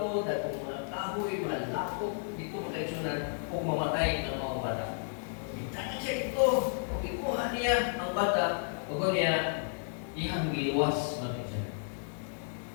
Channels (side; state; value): right; silent; digital silence